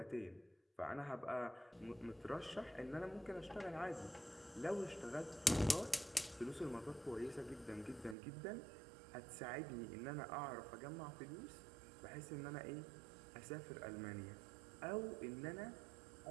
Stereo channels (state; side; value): drops out; left; at 8.2 s